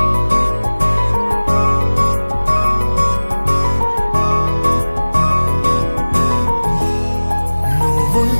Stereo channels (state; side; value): inverted; both; correlation -1.00